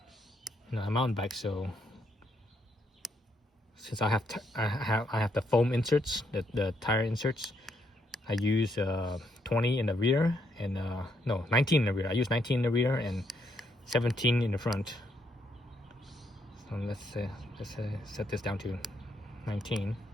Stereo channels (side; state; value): both; normal; correlation 0.75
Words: No, I'm mountain bike, so since I have the foam inserts, the tire inserts, I use 20 in the rear and no, 19 in the rear. I use 19 in the rear and 17 in the front. So let's set this down to 19.